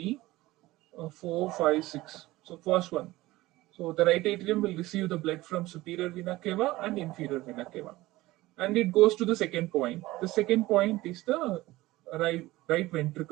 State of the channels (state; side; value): quieter; left; 18.4 dB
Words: 4, 5, 6. So first one. So the right atrium will receive the blood from superior vena cava and inferior vena cava, and it goes to the second point. The second point is the right